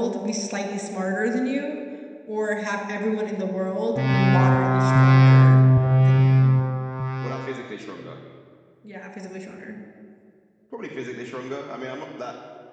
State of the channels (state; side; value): identical; both; correlation 1.00